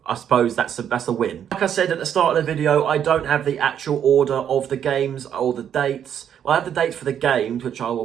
I suppose that's a win. Like I said at the start of the video, I don't have the actual order of the games or the dates. Well, I have the dates for the games, which I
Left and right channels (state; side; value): quieter; left; 9.1 dB